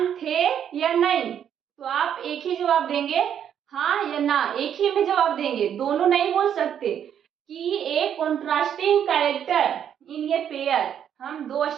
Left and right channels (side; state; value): left; quieter; 9.1 dB